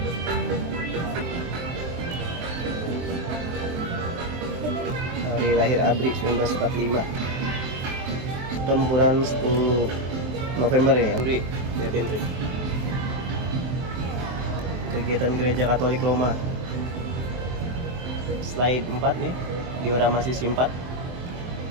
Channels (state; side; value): late; left; 23 ms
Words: Hari lahir ABRI 1945. Tempuran 10 November ya. ABRI, lihatin Trik. Kegiatan Gereja Katolik Roma. Slide 4 nih, diorama sisi 4.